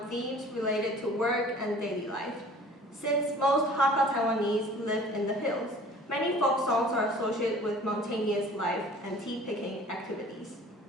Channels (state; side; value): normal; both; correlation 0.48